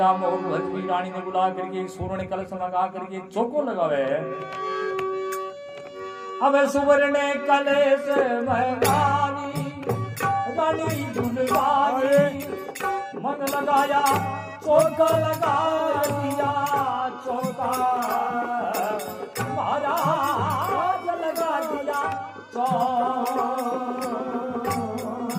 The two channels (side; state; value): both; identical; correlation 1.00